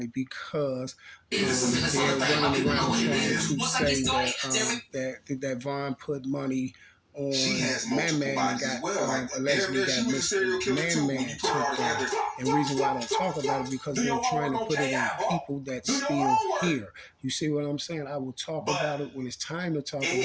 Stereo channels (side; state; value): both; identical; correlation 1.00